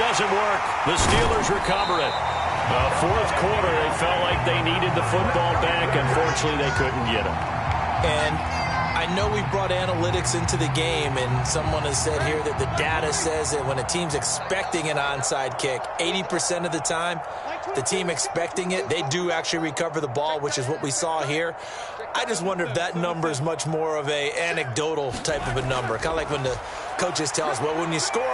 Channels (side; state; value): both; identical; correlation 1.00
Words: work. The Steelers recover it. The 4th quarter, they felt like they needed the football back. Unfortunately, they couldn't get it. And I know we brought analytics into the game, and someone has said here that the data says that when a team's expecting an onside kick, 80% of the time, the team expecting it, they do actually recover the ball, which is what we saw here. I just wonder if that number is much more of a anecdotal type of a number. Kind of like when the coaches tell us, well, when you score